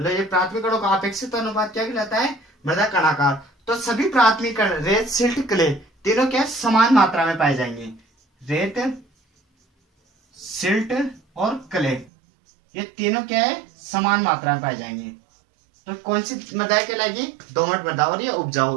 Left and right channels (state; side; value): drops out; left; at 12.1 s